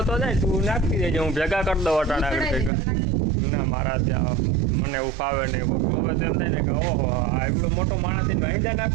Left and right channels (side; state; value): left; drops out; at 2.7 s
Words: જાય, તું નાખી દેજે, હું ભેગા કરી દઉં અટાણા. ના, મારા ત્યાં મને એવું ફાવે નહીં. હવે તો એમ થાય ને કે ઓહો આ એવડો મોટો માણસ થઈને વાહિંદા